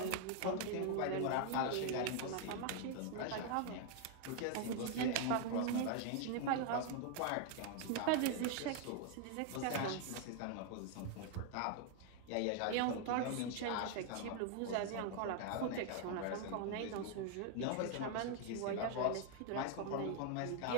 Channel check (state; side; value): different; both; correlation 0.00